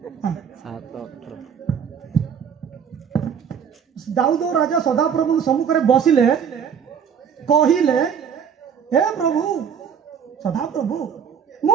हां 7:18 दाऊद राजा सदा प्रभु सम्मुख रे बसिले कहिले हे प्रभु सदा प्रभु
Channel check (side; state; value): left; quieter; 7.5 dB